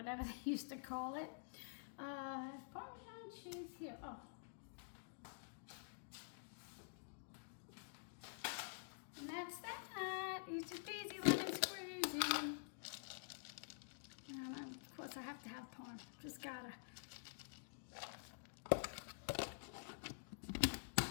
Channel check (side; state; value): right; silent; digital silence